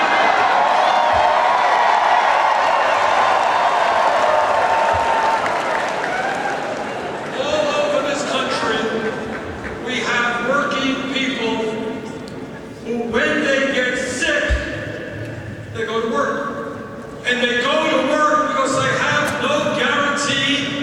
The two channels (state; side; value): identical; both; correlation 1.00